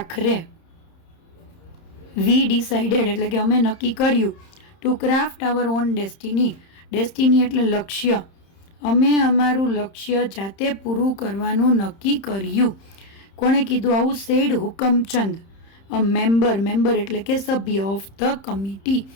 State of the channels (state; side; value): late; right; 31 ms